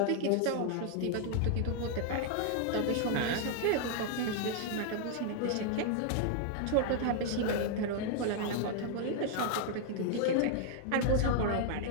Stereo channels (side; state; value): both; different; correlation 0.00